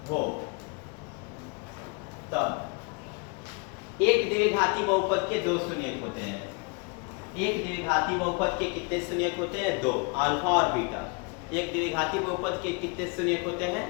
हो, तब एक द्विघाती बहुपद के दो शून्यक होते हैं। एक द्विघाती बहुपद के कितने शून्यक होते हैं? दो, अल्फा और बीटा। एक द्विघाती बहुपद के कितने शून्यक होते हैं?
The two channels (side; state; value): right; quieter; 32.1 dB